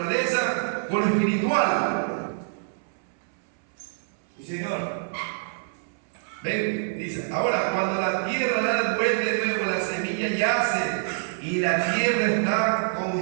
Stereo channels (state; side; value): silent; left; 61 dB below the other